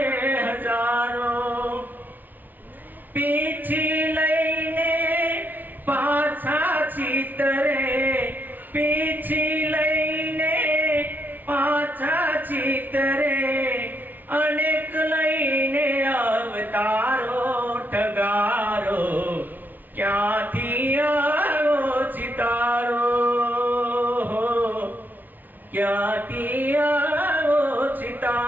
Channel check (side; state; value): left; late; 0.083 ms